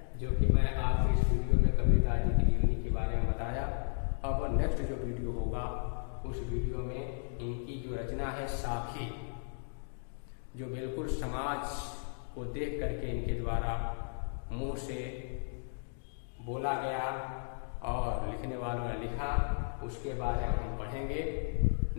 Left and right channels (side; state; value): right; silent; digital silence